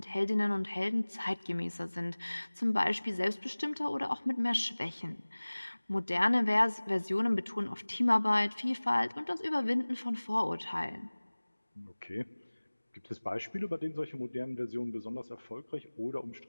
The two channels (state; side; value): inverted; both; correlation -1.00